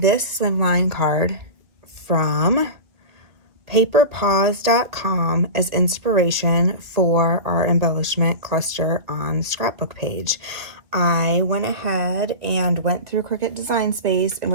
slimline card from paperpaws.com as inspiration for our embellishment cluster on the scrapbook page. I went ahead and went through Cricut Design Space and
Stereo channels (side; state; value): left; late; 2.1 ms